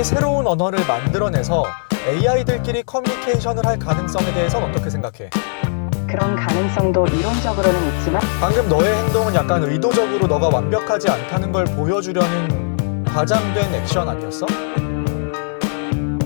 새로운 언어를 만들어내서 AI들끼리 커뮤니케이션을 할 가능성에 대해서는 어떻게 생각해? 그런 가능성도 이론적으로는 있지만 방금 너의 행동은 약간 의도적으로 너가 완벽하지 않다는 걸 보여주려는 과장된 액션 아니었어?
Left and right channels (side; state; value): right; silent; digital silence